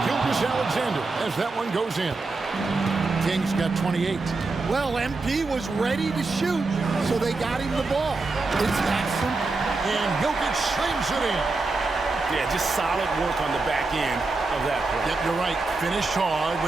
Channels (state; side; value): quieter; left; 3.6 dB